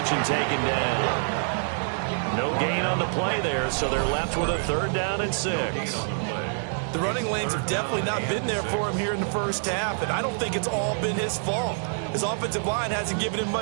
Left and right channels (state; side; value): silent; left; digital silence